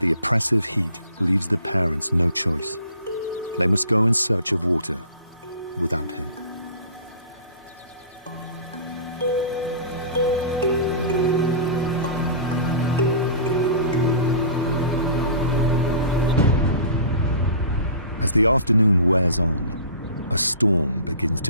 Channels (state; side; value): inverted; both; correlation -0.41